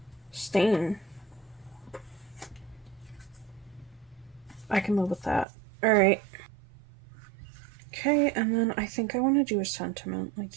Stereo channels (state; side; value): drops out; left; at 5.5 s